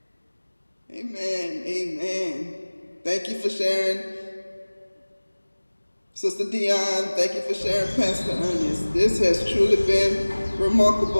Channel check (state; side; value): inverted; both; correlation -1.00